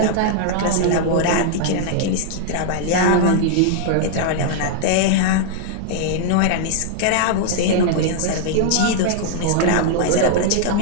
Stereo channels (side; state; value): both; different; correlation -0.01